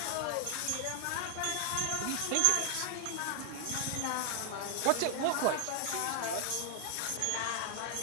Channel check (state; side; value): different; both; correlation 0.00